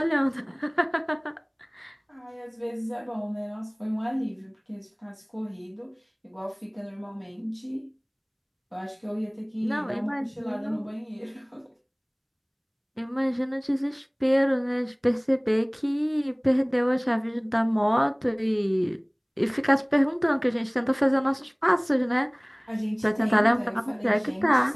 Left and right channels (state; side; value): identical; both; correlation 1.00